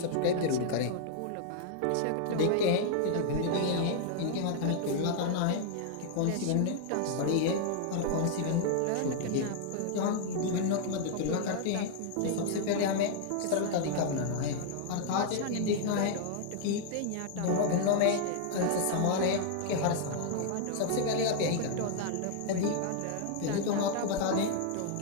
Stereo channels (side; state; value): both; different; correlation 0.00